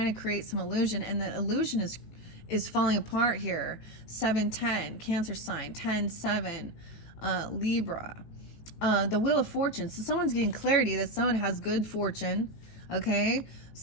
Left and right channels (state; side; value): late; right; 18 ms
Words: to create some illusion, and the illusion is falling apart here. 7-10, Cancer sign. 10-7, Libra. The Wheel of Fortune. So someone's getting clarity that someone has good fortune. Okay,